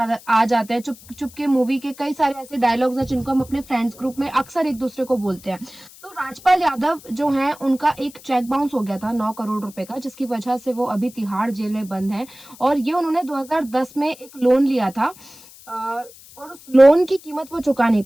आ जाते हैं। चुप चुप के मूवी के कई सारे ऐसे डायलॉग्स हैं जिनको हम अपने फ्रेंड्स ग्रुप में अक्सर एक दूसरे को बोलते हैं। तो राजपाल यादव जो है, उनका एक चेक बाउंस हो गया था 9 करोड़ रुपए का, जिसकी वजह से वो अभी तिहाड़ जेल में बंद है। और ये उन्होंने 2010 में एक लोन लिया था, और उस लोन की कीमत वो चुका नहीं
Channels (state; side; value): noise; left; hiss, 21 dB below the sound